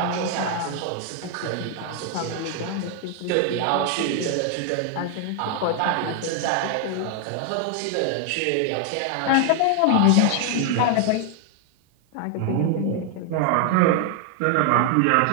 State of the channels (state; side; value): different; both; correlation 0.00